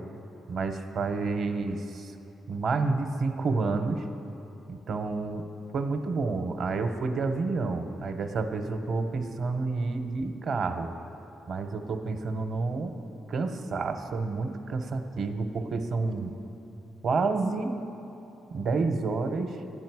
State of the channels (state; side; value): quieter; left; 3.4 dB